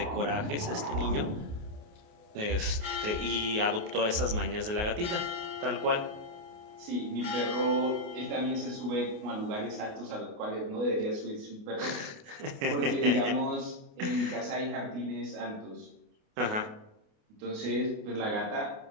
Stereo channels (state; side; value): late; left; 28 ms